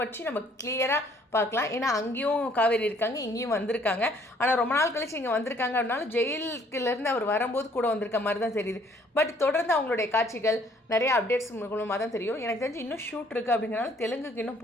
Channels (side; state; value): both; normal; correlation 0.62